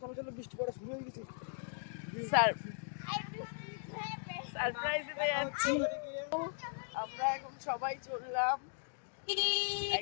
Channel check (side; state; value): right; silent; digital silence